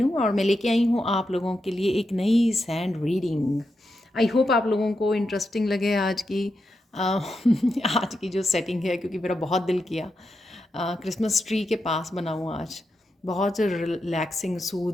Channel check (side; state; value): both; normal; correlation 0.86